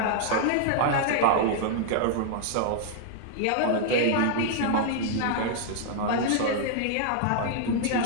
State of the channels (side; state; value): both; different; correlation -0.01